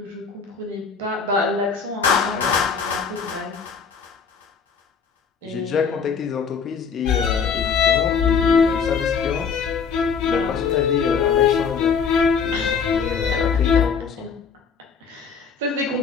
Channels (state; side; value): quieter; right; 6.0 dB